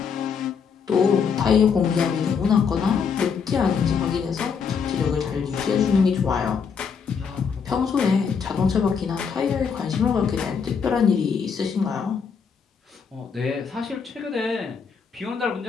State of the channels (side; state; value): right; quieter; 6.2 dB